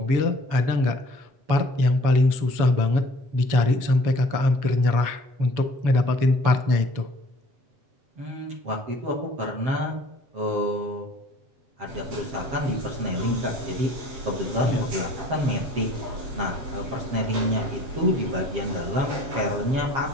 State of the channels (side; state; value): left; late; 7.1 ms